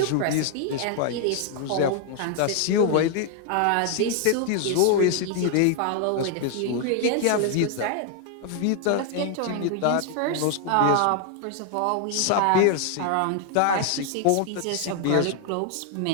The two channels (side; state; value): both; different; correlation 0.00